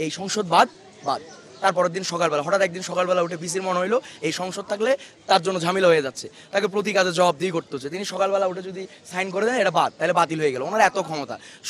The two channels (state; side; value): identical; both; correlation 1.00